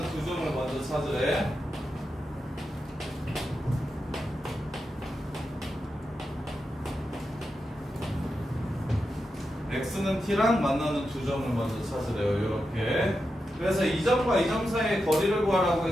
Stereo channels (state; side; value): normal; both; correlation 0.88